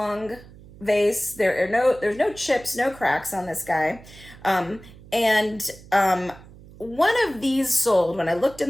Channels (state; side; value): noise; right; hum, 20 dB below the sound